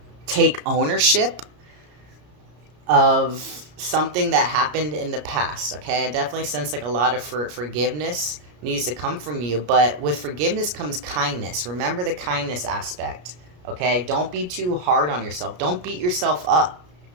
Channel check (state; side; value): late; left; 33 ms